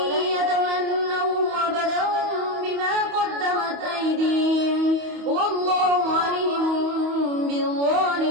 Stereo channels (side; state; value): left; late; 28 ms